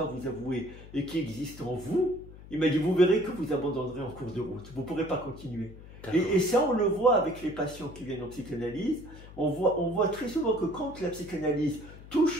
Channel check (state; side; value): noise; left; hum, 17 dB below the sound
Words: vous avouer et qui existent en vous, il m'a dit, vous verrez que vous abandonnerez en cours de route. Vous ne pourrez pas continuer. Et ça, on le voit avec les patients qui viennent en psychanalyse. On voit très souvent que quand la psychanalyse